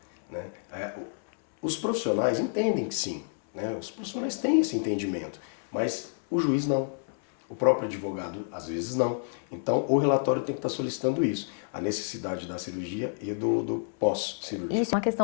né? Os profissionais entendem que sim, né? Os profissionais têm esse entendimento, mas o juiz não. O próprio advogado, às vezes, não. Então, o relatório tem que estar solicitando isso, a necessidade da cirurgia e do pós-cirúrgico. Isso é uma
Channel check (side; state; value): right; silent; 59 dB below the other